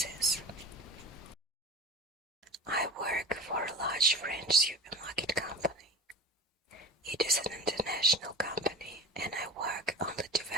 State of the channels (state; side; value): normal; both; correlation 0.33